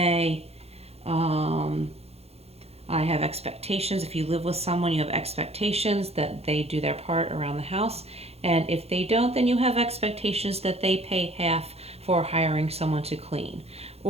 I have expectations. If you live with someone, you have expectations that they do their part around the house. And if they don't, then you have expectations that they pay half for hiring someone to clean.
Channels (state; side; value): late; left; 0.30 ms